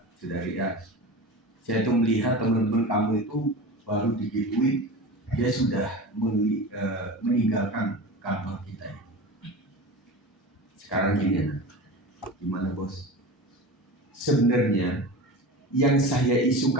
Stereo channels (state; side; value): normal; both; correlation 0.30